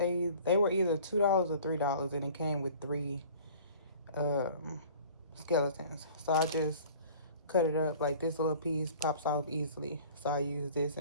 were either $2 or $3, and it came with 3 skeletons. So I just cut it up. Like, this little piece pops off easily, so I use this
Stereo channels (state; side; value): inverted; both; correlation -0.47